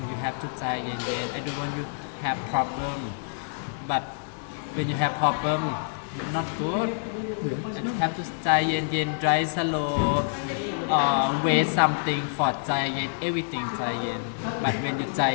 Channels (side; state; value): right; silent; digital silence